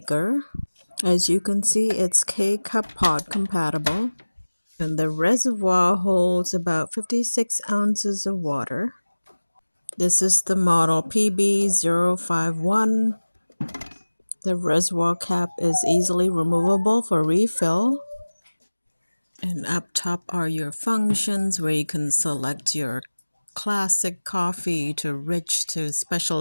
As you can see, it's K-Cup pod compatible, and the reservoir holds about 56 ounces of water. This is the model PB051. The reservoir cap is easily removable for refill. And up top are your functions where you can select your classic coffee to rich to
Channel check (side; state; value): both; inverted; correlation -1.00